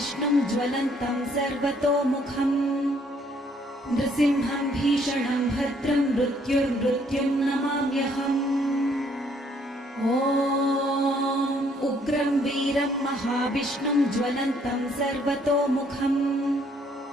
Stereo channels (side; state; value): both; normal; correlation 0.65